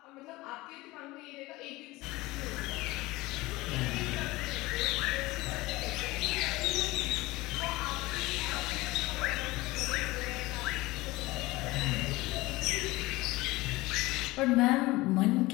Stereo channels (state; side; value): quieter; right; 20.3 dB